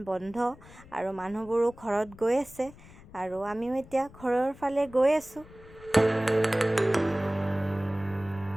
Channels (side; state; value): left; noise; rumble, 21 dB below the sound